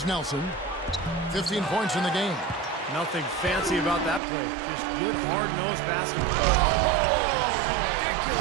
Nelson. 15 points in the game. Nothing fancy about that play. Just good, hard-nosed basketball.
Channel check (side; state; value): left; drops out; at 4.2 s